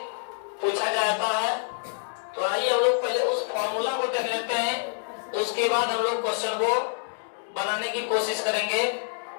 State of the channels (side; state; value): right; silent; 60 dB below the other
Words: पूछा जाता है। तो आइए हम लोग पहले उस फार्मूला को देख लेते हैं, उसके बाद हम लोग क्वेश्चन को बनाने की कोशिश करेंगे।